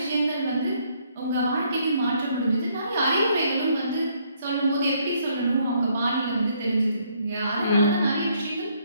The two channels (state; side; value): inverted; both; correlation -0.69